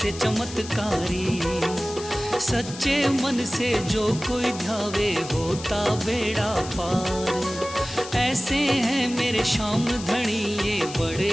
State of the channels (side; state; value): left; noise; hiss, 13 dB below the sound